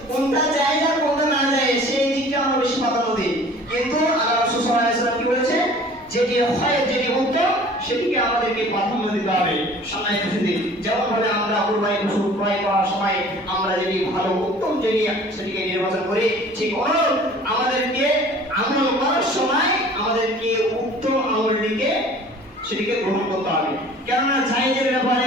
আর কোনটা না জায়েজ, সেই দিকটা আমরা বেশি প্রাধান্য দিই। কিন্তু আল্লাহ রাসূল সাল্লাল্লাহু আলাইহি ওয়াসাল্লাম কি বলেছে? যেটি খয়ের, যেটি উত্তম, সেটিকে আমাদেরকে প্রাধান্য দিতে হবে। সম্মানিত সুধী, যেমন ভাবে আমরা কুরবানি পশু ক্রয় করার সময় আমরা যেটি ভালো উত্তম সেটিকে নির্বাচন করি, ঠিক আমাদেরকে আমল করার সময় আমাদেরকে উত্তম আমলটিকে সেটিকে গ্রহণ করতে হবে। কেননা জায়েজের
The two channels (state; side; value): normal; both; correlation 0.48